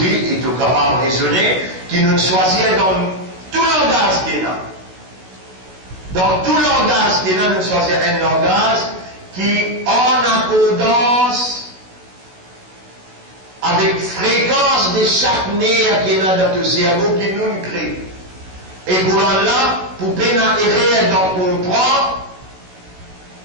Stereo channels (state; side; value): late; left; 16 ms